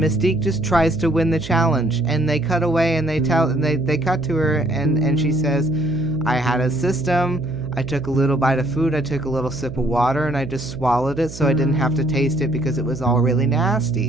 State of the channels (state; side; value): noise; right; hum, 13 dB below the sound